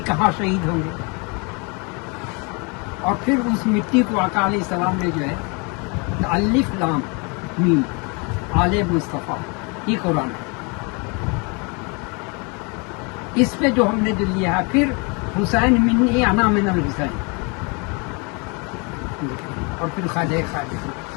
کہاں شہید ہوں گے؟ اور پھر اس مٹی کو آقا علیہ السلام نے جو ہے الف لام میم آل مصطفیٰ یہ قرآن ہے، اس پہ جو ہم نے جو لیا ہے. پھر حسین منی انا من الحسین، اور پھر خواجہ خواجہ.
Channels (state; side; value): quieter; right; 31.9 dB